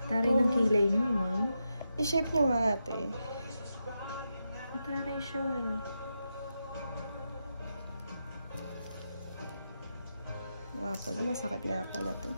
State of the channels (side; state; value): both; inverted; correlation -0.86